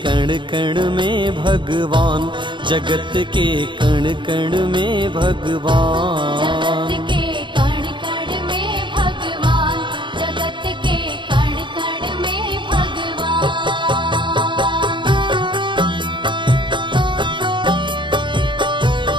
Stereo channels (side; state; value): left; late; 0.23 ms